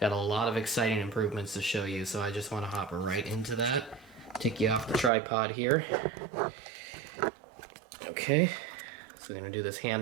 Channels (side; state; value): left; drops out; at 5.1 s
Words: a lot of exciting improvements to show you, so I just want to hop right into that. Take you off the tripod here. Okay, so we're going to do this